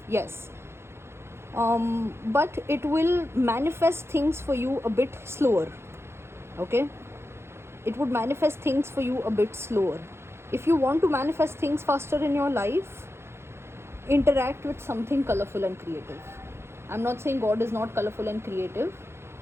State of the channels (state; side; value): late; left; 0.12 ms